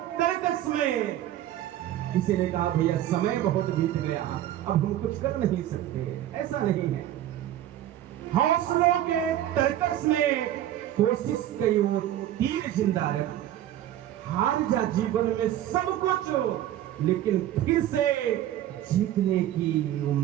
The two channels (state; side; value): quieter; left; 12.4 dB